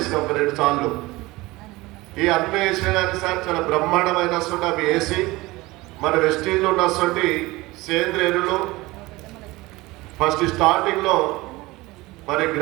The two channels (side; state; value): left; quieter; 20.7 dB